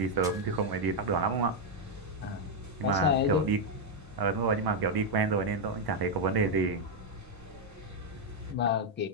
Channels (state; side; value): normal; both; correlation 0.01